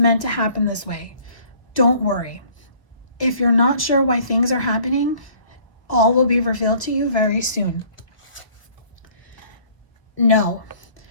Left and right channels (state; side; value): late; right; 1.2 ms